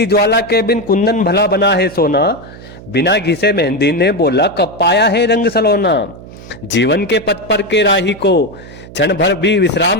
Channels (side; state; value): right; noise; hum, 17 dB below the sound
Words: ज्वाला के बिन कुंदन भला बना है सोना। बिना घिसे मेहंदी ने बोला कब पाया है रंग सलोना। जीवन के पथ पर के राही को क्षण भर भी